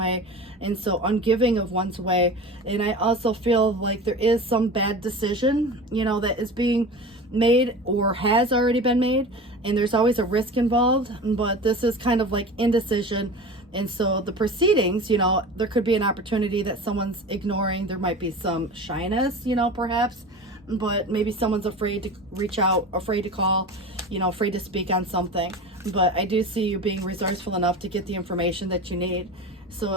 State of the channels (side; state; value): both; normal; correlation 0.33